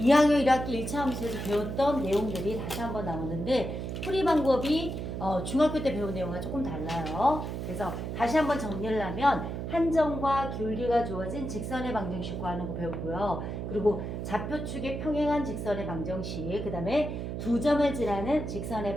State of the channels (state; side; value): noise; right; hum, 5 dB below the sound